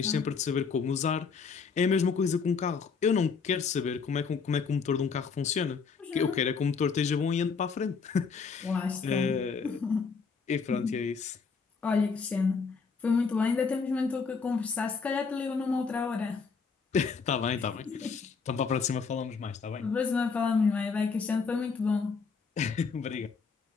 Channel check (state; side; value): quieter; right; 5.3 dB